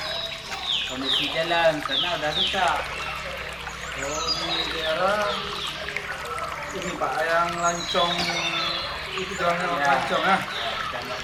kondisi jalan sana udah rusak. Oh, di daerah ini Pak, yang lancong itu jalannya Ya. lancong ya. Sudah nggak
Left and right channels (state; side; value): identical; both; correlation 1.00